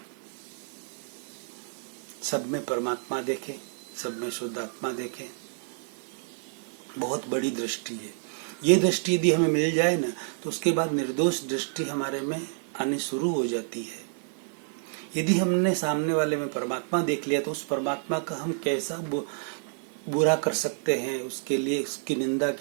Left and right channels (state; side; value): silent; left; 59 dB below the other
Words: सब में परमात्मा देखें, सब में शुद्ध आत्मा देखें। बहुत बड़ी दृष्टि है। ये दृष्टि यदि हमें मिल जाए ना, तो उसके बाद निर्दोष दृष्टि हमारे में आनी शुरू हो जाती है। यदि हमने सामने वाले में परमात्मा देख लिया तो उस परमात्मा का हम कैसा बुरा कर सकते हैं, उसके लिए उसकी निंदा